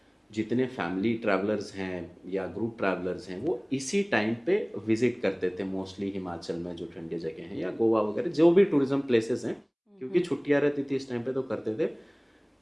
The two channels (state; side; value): identical; both; correlation 1.00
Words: जितने फैमिली ट्रैवलर्स हैं या ग्रुप ट्रैवलर्स हैं, वो इसी टाइम पे विजिट करते थे मोस्टली हिमाचल में जो ठंडी जगह हैं, या गोवा वगैरह जो भी टूरिज्म प्लेसेस हैं, क्योंकि छुट्टियां रहती थी इस टाइम पे, तो करते थे।